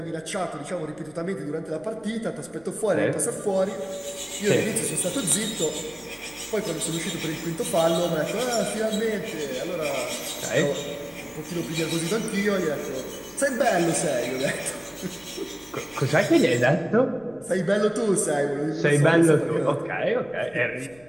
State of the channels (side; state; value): left; noise; rumble, 27 dB below the sound